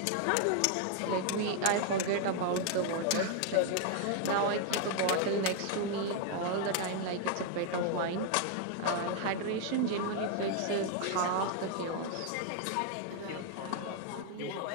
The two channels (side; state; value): both; different; correlation 0.00